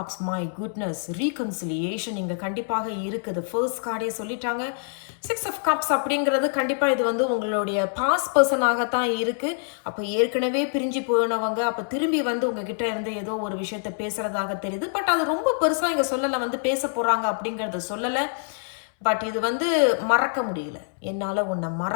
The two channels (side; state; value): right; silent; 60 dB below the other